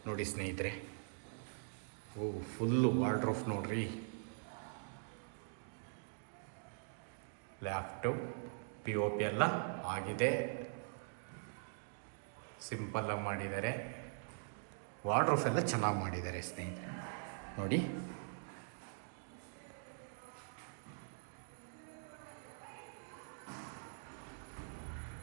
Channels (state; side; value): silent; left; digital silence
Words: ನೋಡಿ ಸ್ನೇಹಿತರೆ. ಓ, ಫುಲ್ಲು ವಾರ್ಡ್ರೋಬ್ ನೋಡ್ರಿ. ಲ್ಯಾಪ್ಟಾಪ್ POP ಎಲ್ಲ ಆಗಿದೆ, ಸಿಂಪಲ್ಲಾಗಿ ಮಾಡಿದ್ದಾರೆ. ವಾರ್ಡ್ರೋಬ್ ಎಲ್ಲ ಚೆನ್ನಾಗಿ ಮಾಡಿದ್ದಾರೆ ಸ್ನೇಹಿತರೆ ನೋಡಿ.